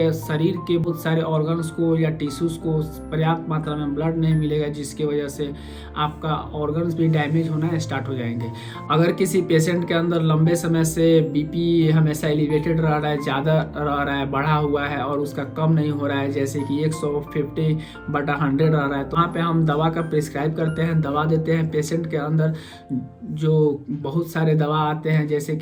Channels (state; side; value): identical; both; correlation 1.00